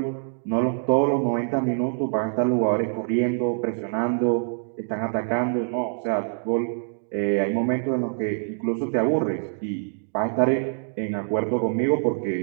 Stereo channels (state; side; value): silent; left; digital silence